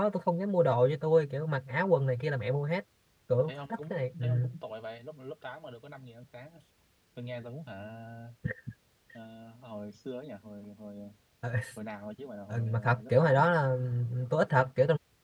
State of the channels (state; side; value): identical; both; correlation 1.00